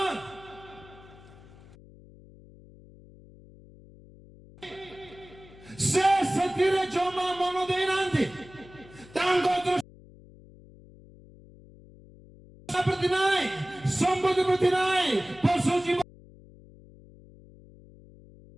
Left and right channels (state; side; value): noise; left; hum, 22 dB below the sound